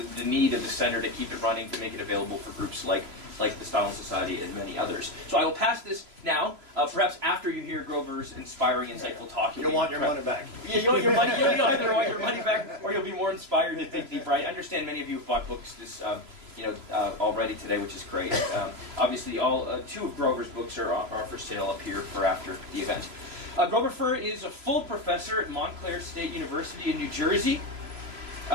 need of the center to keep it running, to make it available for groups like the Stalin Society and many others. So I will pass this now, perhaps after you hear Grover's inspiring, insightful talk. You'll want your money back. Yeah, you'll either want your money back, or you'll be more inspired to think deeper. I understand many of you have bought books this already today, which is great. Obviously, two of Grover's books are for sale up here for after the event. Grover Furr is a full professor at Montclair State University in New Jersey.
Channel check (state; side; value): late; left; 3.0 ms